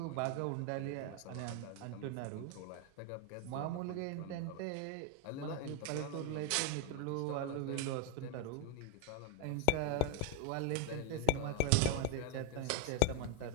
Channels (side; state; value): both; different; correlation 0.01